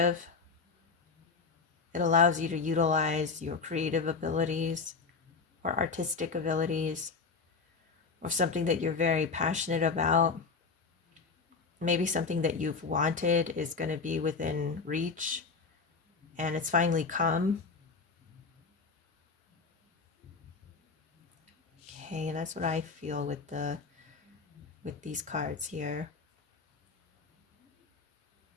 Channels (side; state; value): right; quieter; 4.7 dB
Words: It allows you to utilize your creative abilities or artistic abilities or something that you're very passionate about. Maybe something that you've wanted is going to be within reach and it's finally come. Okay, and that's what I feel with these cards here.